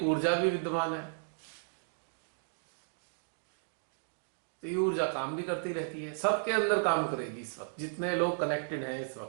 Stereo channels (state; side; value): silent; left; digital silence